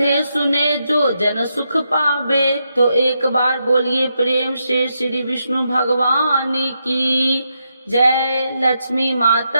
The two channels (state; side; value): inverted; both; correlation -0.83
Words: सुने जो जन सुख पावे। तो एक बार बोलिए प्रेम से श्री विष्णु भगवान की जय, लक्ष्मी